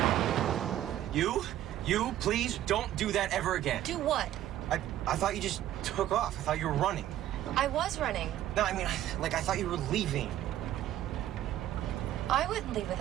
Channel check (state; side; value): quieter; left; 12.7 dB